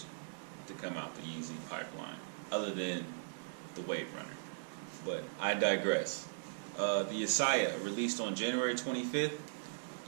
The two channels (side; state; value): left; silent; digital silence